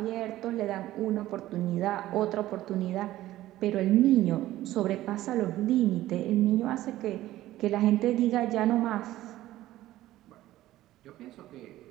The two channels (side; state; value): left; quieter; 15.1 dB